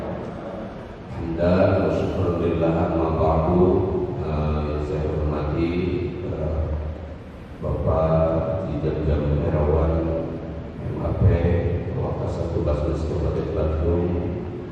Alhamdulillah wa syukurillah amma ba'du. Yang saya hormati Bapak Jam Herawan MAP Wakasat Tugas Kabupaten Bandung.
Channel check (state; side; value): identical; both; correlation 1.00